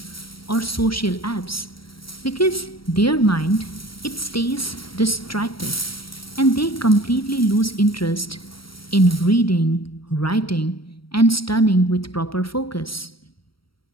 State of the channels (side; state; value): right; late; 0.75 ms